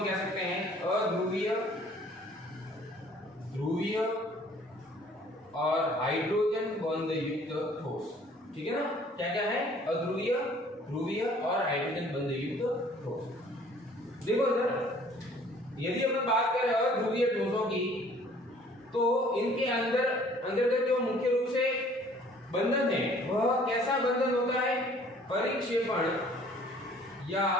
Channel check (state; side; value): normal; both; correlation 0.55